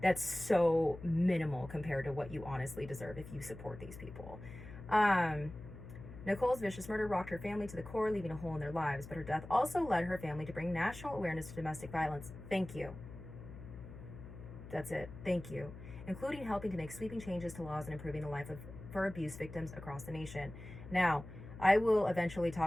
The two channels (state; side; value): noise; left; hum, 13 dB below the sound